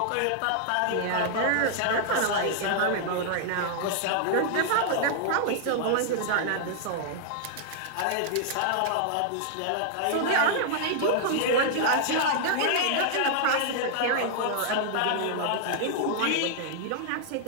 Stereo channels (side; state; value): both; different; correlation -0.01